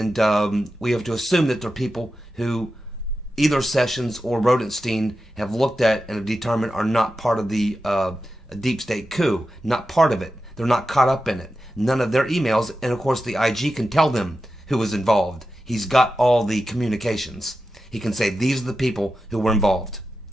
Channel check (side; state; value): both; normal; correlation 0.91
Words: we have to assume that they're people who either Sessions or Rodenstein have looked at and have determined are not part of the deep state coup. Not part of it. They're not caught up in it. None of their emails. And of course the IG can tell them who was involved. He's got all the communications. he can say, these are the people who were involved.